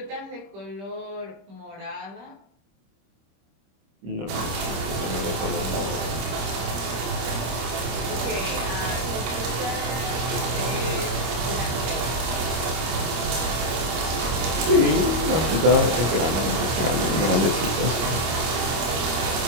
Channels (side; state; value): left; late; 26 ms